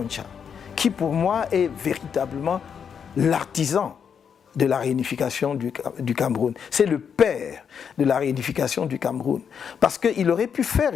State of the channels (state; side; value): quieter; right; 7.2 dB